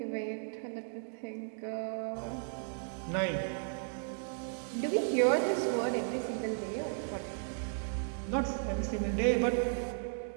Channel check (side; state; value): left; silent; digital silence